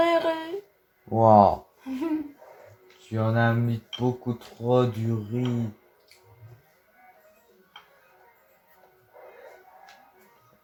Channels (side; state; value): both; identical; correlation 1.00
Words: Waouh. Tu en as mis beaucoup trop du riz.